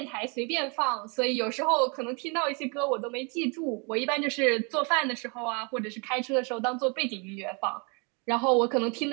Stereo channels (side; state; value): left; quieter; 33.1 dB